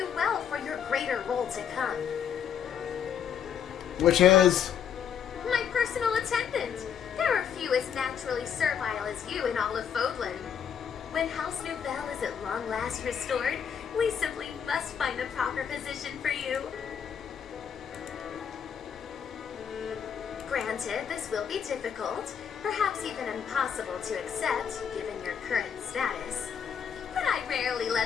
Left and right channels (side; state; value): right; quieter; 8.0 dB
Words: well for your greater role to come. Which is... My personal attendant. There are few as naturally servile as you in all of Fódlan. When House Nouvelle is at long last restored, we simply must find the proper position for you. Granted, this will be difficult, perhaps even impossible to accept, given your current status. But I rarely